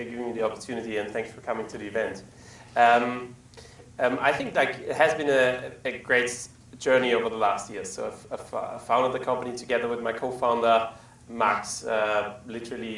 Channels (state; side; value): identical; both; correlation 1.00